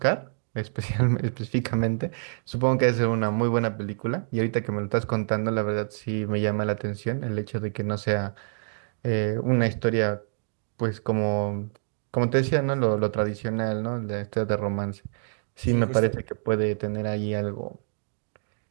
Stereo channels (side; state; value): left; silent; digital silence